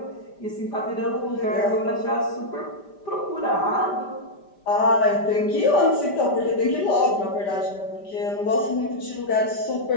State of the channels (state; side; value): late; right; 5.1 ms